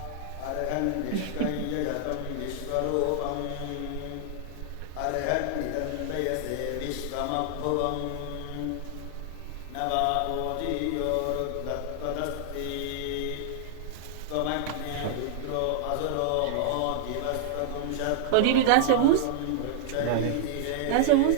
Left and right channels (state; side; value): different; both; correlation -0.01